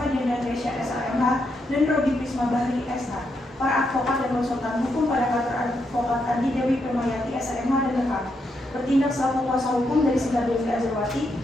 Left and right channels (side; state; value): both; normal; correlation 0.80